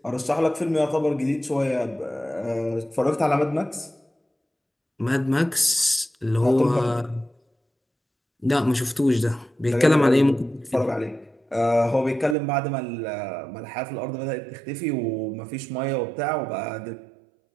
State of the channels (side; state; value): left; drops out; at 12.4 s